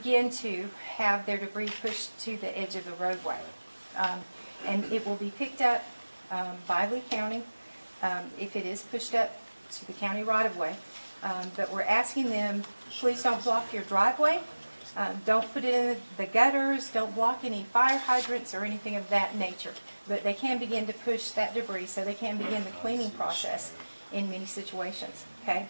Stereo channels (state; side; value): inverted; both; correlation -1.00